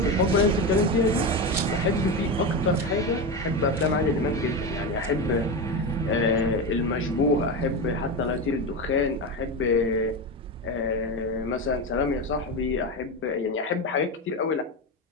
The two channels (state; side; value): normal; both; correlation 0.18